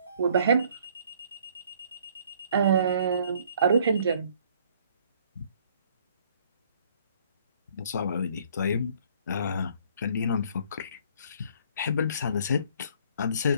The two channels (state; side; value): inverted; both; correlation -0.60